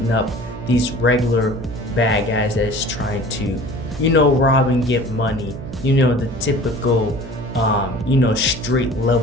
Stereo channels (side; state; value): right; noise; hum, 12 dB below the sound